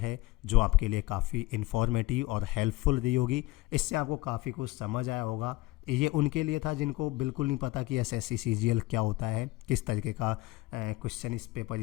जो आपके लिए काफ़ी इन्फॉर्मेटिव और हेल्पफुल रही होगी। इससे आपको काफ़ी कुछ समझ आया होगा। ये उनके लिए था जिनको बिल्कुल नहीं पता कि एसएससी सीजीएल क्या होता है, किस तरीके का क्वेश्चन इस पेपर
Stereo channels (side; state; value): right; quieter; 20.1 dB